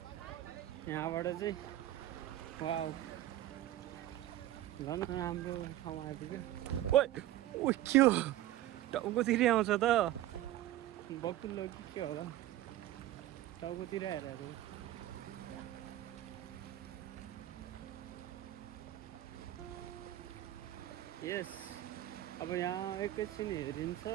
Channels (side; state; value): left; quieter; 14.1 dB